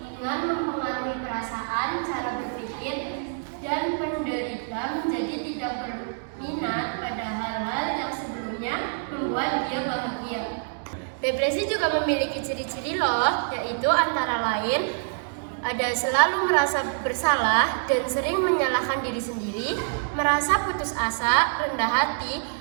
mempengaruhi perasaan, cara berpikir, dan penderita menjadi tidak berminat pada hal-hal yang sebelumnya membuat dia bahagia. Depresi juga memiliki ciri-ciri loh, yaitu antara lain ada selalu merasa bersalah dan sering menyalahkan diri sendiri, merasa putus asa, rendah hati,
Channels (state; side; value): silent; left; digital silence